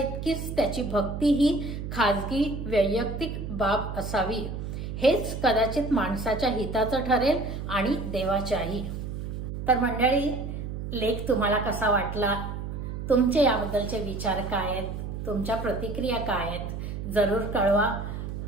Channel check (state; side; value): noise; right; hum, 6 dB below the sound